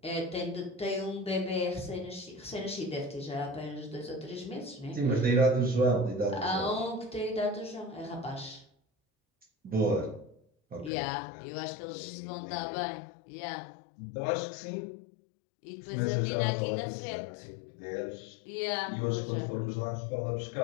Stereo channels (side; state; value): right; drops out; at 10.9 s